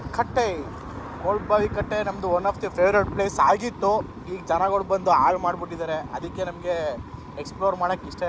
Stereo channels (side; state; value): both; identical; correlation 1.00